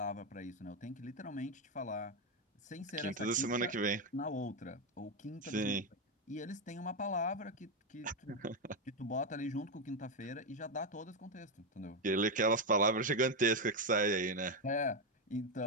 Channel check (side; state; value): both; normal; correlation 0.07